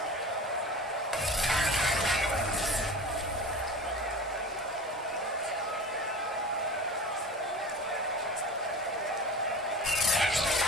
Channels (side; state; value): both; normal; correlation 0.34